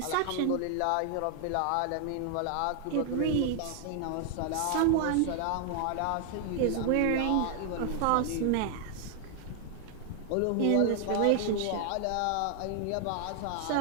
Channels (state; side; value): different; both; correlation 0.00